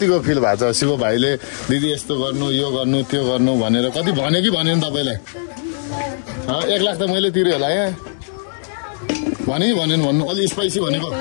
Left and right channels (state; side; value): silent; right; digital silence